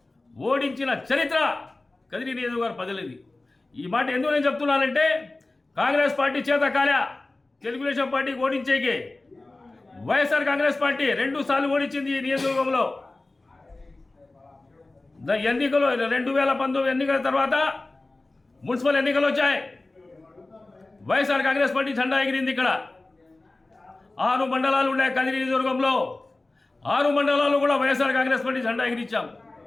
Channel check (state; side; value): quieter; right; 3.0 dB